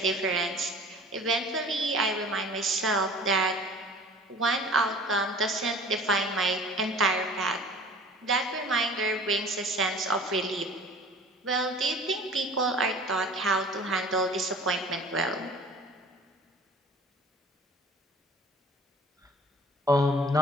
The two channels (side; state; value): both; normal; correlation 0.46